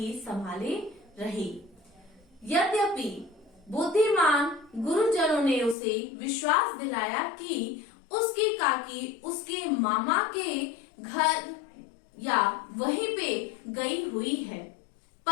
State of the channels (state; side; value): drops out; right; at 5.8 s